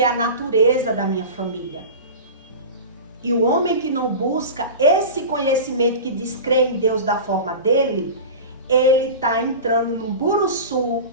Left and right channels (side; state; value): both; inverted; correlation -0.30